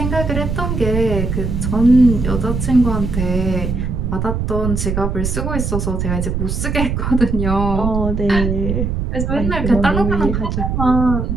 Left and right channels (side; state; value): right; noise; rumble, 2 dB below the sound